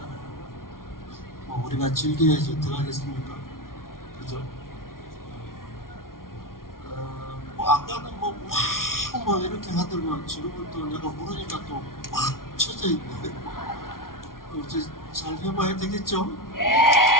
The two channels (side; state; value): right; late; 0.92 ms